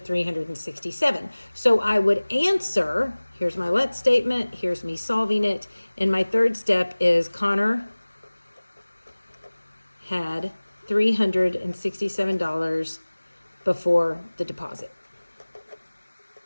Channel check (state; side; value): inverted; both; correlation -1.00